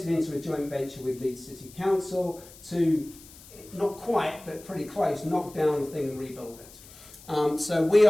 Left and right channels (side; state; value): left; noise; hiss, 21 dB below the sound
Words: into a joint venture with Leeds City Council to, not quite, but pretty close, knock down the thing and rebuild it. So we